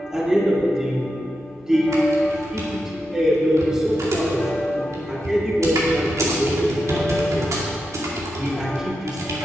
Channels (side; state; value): both; normal; correlation 0.88